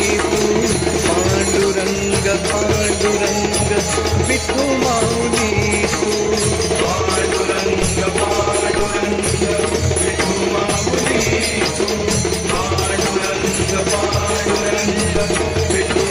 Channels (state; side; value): identical; both; correlation 1.00